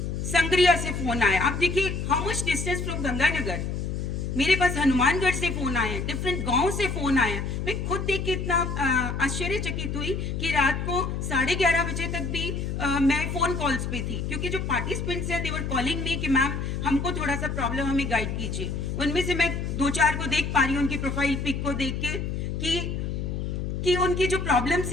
संग्रिया से फोन आया। आप देखिए how much distance from Ganganagar, मेरे पास हनुमानगढ़ से फोन आए, डिफरेंट गांव से फोन आया। मैं खुद देख के इतना आश्चर्यचकित हुई कि रात को 11:30 बजे तक भी मैं फोन कॉल्स पे थी, क्योंकि जो पार्टिसिपेंट्स हैं दे वर कॉलिंग मी कि मैम हमको थोड़ा सा प्रॉब्लम, हमें गाइड कीजिए। उनमें से मैं 2-4 को देख पा रही हूँ, उनकी प्रोफाइल पिक को देख के कि उनकी जो प्रॉब्लम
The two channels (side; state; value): left; noise; hum, 3 dB below the sound